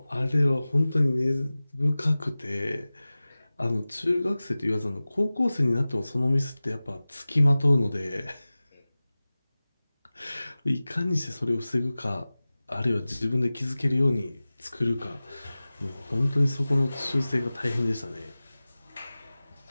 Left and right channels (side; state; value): both; inverted; correlation -0.98